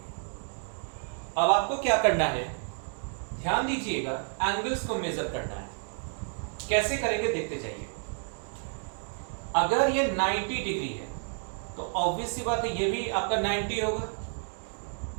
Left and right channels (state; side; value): silent; left; 58 dB below the other